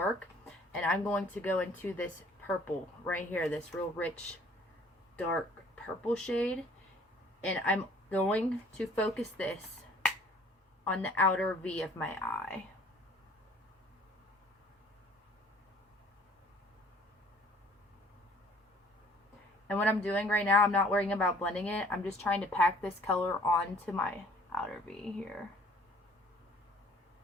and I'm going to go into this purple right here, this real rich, dark purple shade, and I'm going to focus this on the outer V of my eye. And what I'm doing right now, I'm not worrying about blending it, I'm just trying to pack this color onto my outer V here.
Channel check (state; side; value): normal; both; correlation 0.54